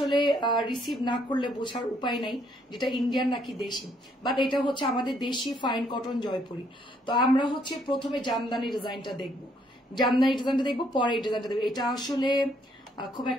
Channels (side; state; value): both; normal; correlation 0.69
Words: রিসিভ না করলে বোঝার উপায় নাই যেটা ইন্ডিয়ান নাকি দেশি, বাট এটা হচ্ছে আমাদের দেশি ফাইন কটন জয়পুরি। তো আমরা হচ্ছে প্রথমে জামদানি ডিজাইনটা দেখবো, পরে এই ডিজাইনটা দেখবো। এটা আসলে খুব